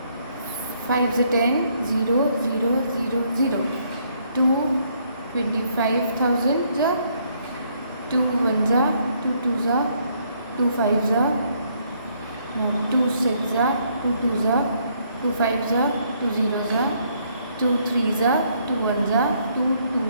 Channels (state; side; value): inverted; both; correlation -0.69